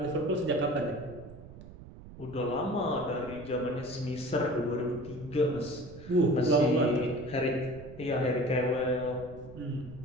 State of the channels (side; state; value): right; noise; rumble, 16 dB below the sound